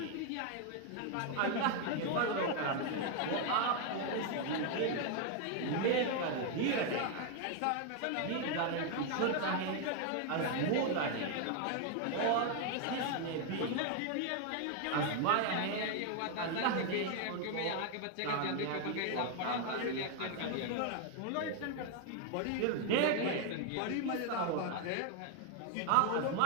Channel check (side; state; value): both; different; correlation 0.01